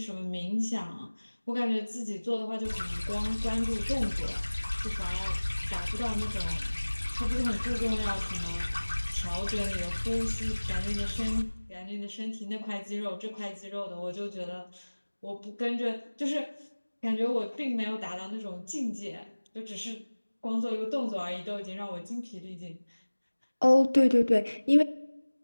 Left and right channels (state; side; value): inverted; both; correlation -1.00